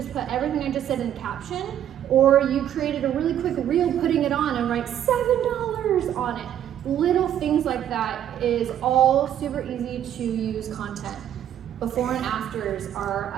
put everything I just said in caption, or you created a really quick reel putting it on and write $7 on it. Little things like that is all super easy to use content. Before and afters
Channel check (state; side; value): quieter; left; 10.6 dB